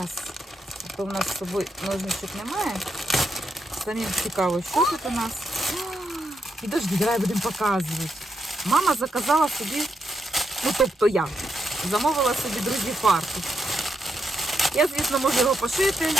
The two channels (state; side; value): normal; both; correlation 0.81